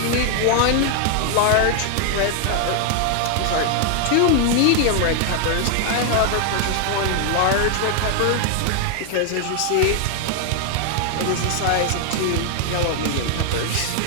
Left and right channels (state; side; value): different; both; correlation 0.00